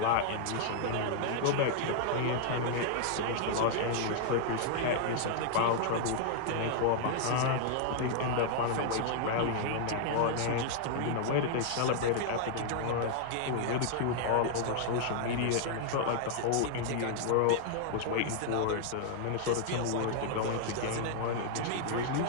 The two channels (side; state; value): both; different; correlation -0.01